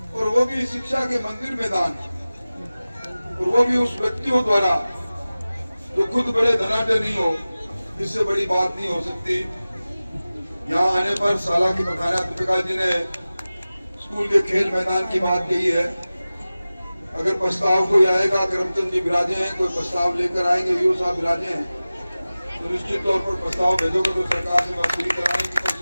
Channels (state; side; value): inverted; both; correlation -0.97